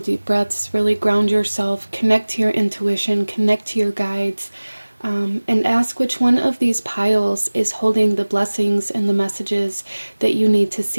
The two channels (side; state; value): both; inverted; correlation -1.00